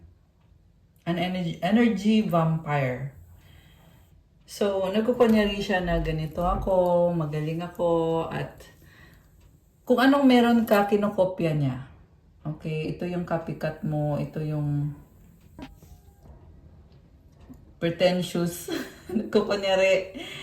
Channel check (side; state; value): both; identical; correlation 1.00